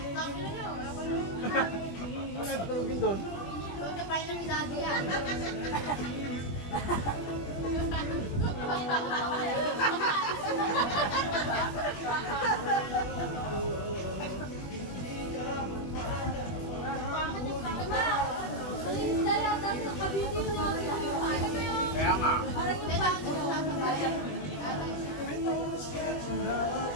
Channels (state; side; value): late; right; 20 ms